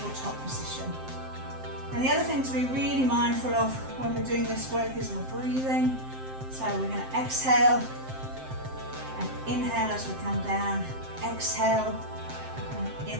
position. And the other thing to be really mindful of when we're doing this work is we're breathing. So we're going to exhale and inhale as we come down, exhale and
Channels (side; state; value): left; late; 7.7 ms